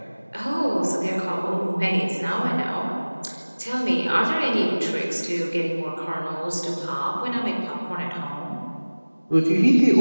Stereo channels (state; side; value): inverted; both; correlation -1.00